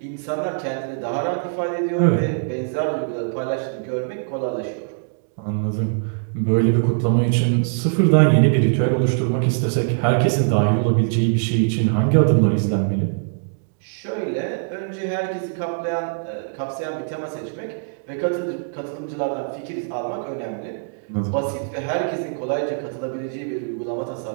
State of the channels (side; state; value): left; silent; digital silence